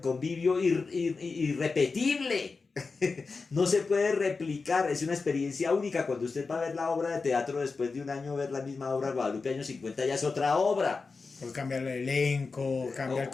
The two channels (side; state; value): right; quieter; 4.4 dB